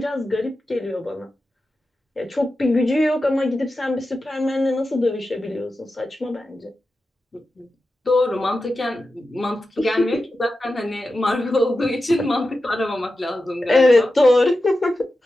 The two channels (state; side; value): normal; both; correlation 0.92